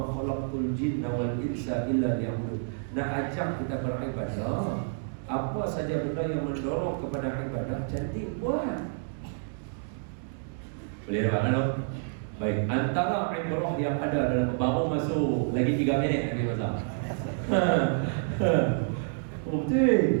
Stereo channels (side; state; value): left; silent; digital silence